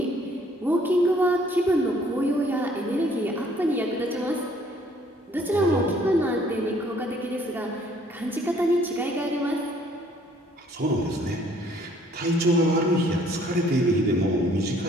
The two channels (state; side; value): normal; both; correlation 0.61